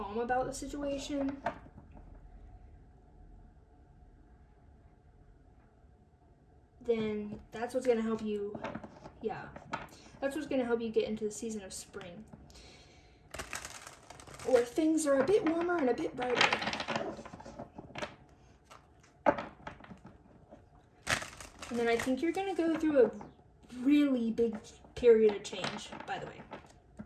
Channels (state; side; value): identical; both; correlation 1.00